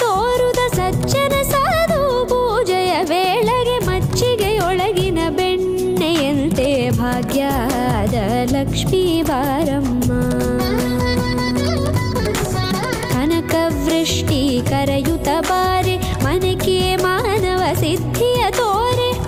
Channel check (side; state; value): both; identical; correlation 1.00